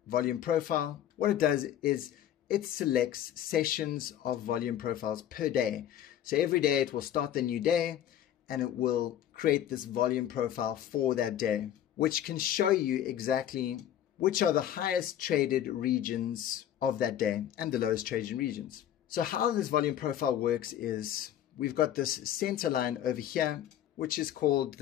volume profile, what it does is it selects sessions of volume profiles per day. So every day it will start the new day and it will create this volume profile for that day, which can show you exactly which are the highest traded regions of that day and the lowest traded regions. So how this volume profile works is we've got this center line over here, which is called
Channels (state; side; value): quieter; right; 11.1 dB